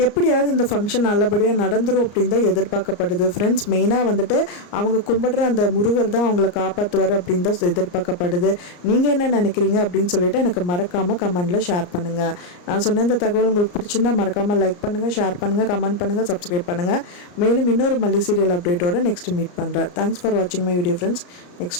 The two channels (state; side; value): late; right; 34 ms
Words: எப்படியாவது இந்த ஃபங்க்ஷன் நல்லபடியாக நடந்துரும் அப்படின்னு தான் எதிர்பார்க்கப்படுது. ஃப்ரெண்ட்ஸ், மெயினாக வந்துட்டு அவங்க கும்பிடுற அந்த முருகர் தான் அவங்கள காப்பாற்றுவார் அப்படின்னு தான் எதிர்பார்க்கப்படுது. நீங்கள் என்ன நினைக்கிறீங்க அப்படின்னு சொல்லிட்டு எனக்கு மறக்காமல் கமெண்ட்டில் ஷேர் பண்ணுங்கள். நான் சொன்ன இந்த தகவல் உங்களுக்கு பிடிச்சிருந்தா மறக்காமல் லைக் பண்ணுங்கள், ஷேர் பண்ணுங்கள், கமெண்ட் பண்ணுங்கள், சப்ஸ்கிரைப் பண்ணுங்கள். மேலும் இன்னொரு மல்லி சீரியல் அப்டேட்டோட நெக்ஸ்ட் மீட் பண்ணுறேன். தேங்க்ஸ் ஃபார் வாட்சிங் மை வீடியோ ஃப்ரெண்ட்ஸ்.